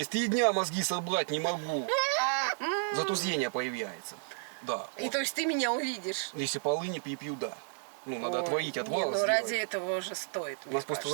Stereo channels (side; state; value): left; silent; digital silence